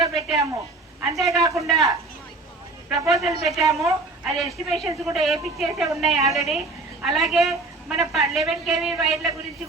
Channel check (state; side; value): quieter; left; 3.3 dB